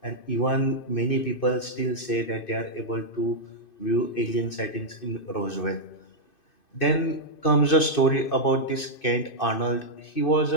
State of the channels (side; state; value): right; late; 2.5 ms